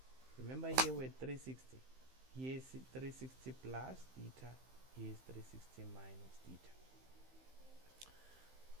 Remember here we're 360. Here is 360 plus theta, here is 360 minus theta.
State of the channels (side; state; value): left; late; 15 ms